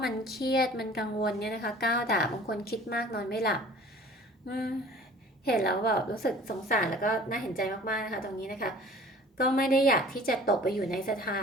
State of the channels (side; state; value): both; normal; correlation 0.47